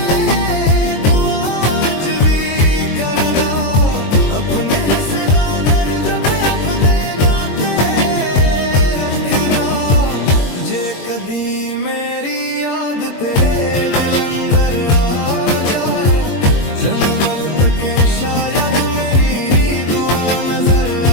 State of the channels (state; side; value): late; right; 22 ms